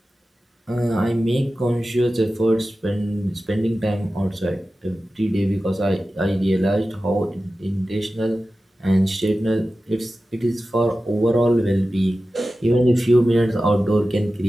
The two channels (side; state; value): both; normal; correlation 0.94